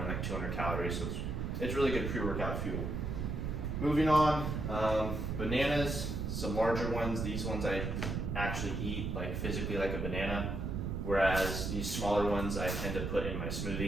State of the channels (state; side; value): noise; right; rumble, 2 dB below the sound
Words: like 200 calories. So it's really good pre-workout fuel. Moving on, bananas, some larger ones. These ones I actually eat like physically like a banana, whereas these smaller ones I tend to put in my